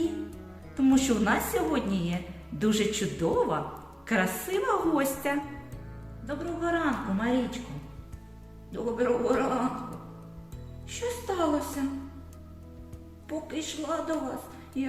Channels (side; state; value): both; identical; correlation 1.00